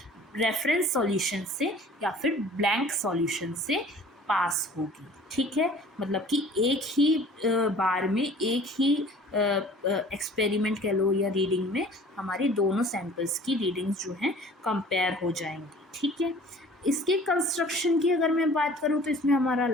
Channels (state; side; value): normal; both; correlation 0.48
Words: रेफरेंस सॉल्यूशन से या फिर ब्लैंक सॉल्यूशन से पास होगी। ठीक है, मतलब कि एक ही बार में एक ही एक्सपेरिमेंट कह लो या रीडिंग में हमारी दोनों सैंपल्स की रीडिंग्स जो हैं कंपेयर हो जाएंगी। ठीक है, इसके कंस्ट्रक्शन की अगर मैं बात करूँ तो इसमें हमारा